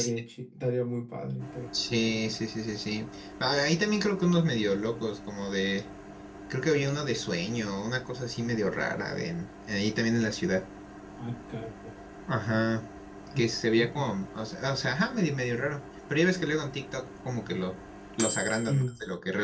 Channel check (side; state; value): both; identical; correlation 1.00